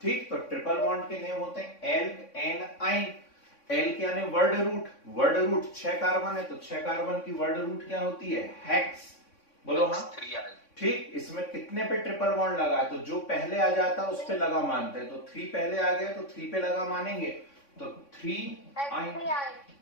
ठीक, तो ट्रिपल बॉन्ड के नेम होते हैं एल्क, एन, आइन। एल्क यानी word root, word root 6 carbon है, तो 6 कार्बन की वर्ड रूट क्या होती है, हेक्स। बोलो हाँ, ठीक। इसमें कितने पे ट्रिपल बॉन्ड लगा है, तो जो पहले आ जाता है उस पे लगा मानते हैं, तो 3 पहले आ गया तो 3 पे लगा मानेंगे, तो 3 आइन,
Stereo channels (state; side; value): late; right; 3.6 ms